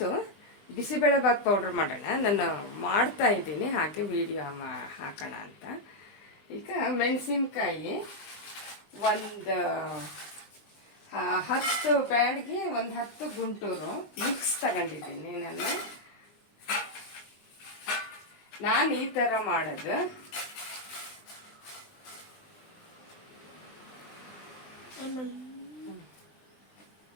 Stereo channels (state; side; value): late; right; 20 ms